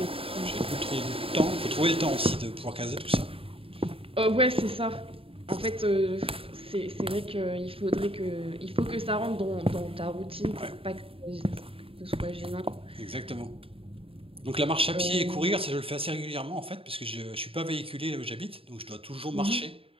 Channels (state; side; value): late; left; 0.27 ms